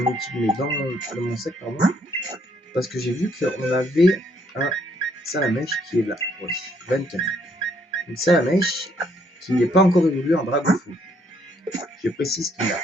équipe, mais dans mon sac, pardon. Parce que j'ai vu qu'on avait un Salamèche qui est là. Oui, 24. Une Salamèche qui n'est pas encore évolué en Dragofeu. Je précise qu'il n'a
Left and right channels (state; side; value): normal; both; correlation 0.69